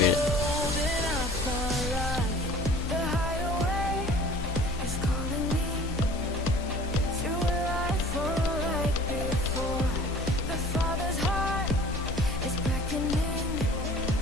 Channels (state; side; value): normal; both; correlation 0.46